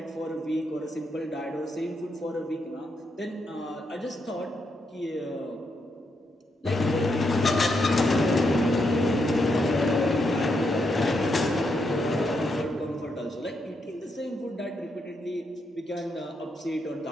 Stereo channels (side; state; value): both; normal; correlation 0.80